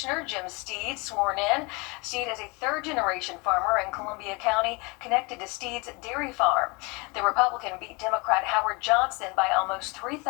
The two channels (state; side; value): quieter; right; 28.0 dB